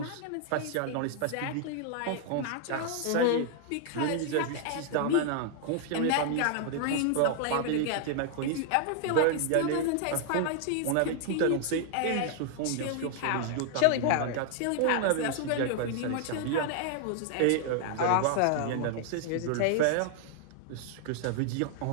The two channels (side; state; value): both; different; correlation 0.00